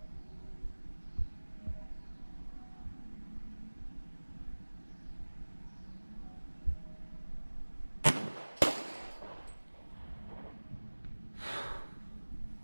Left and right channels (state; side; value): inverted; both; correlation -1.00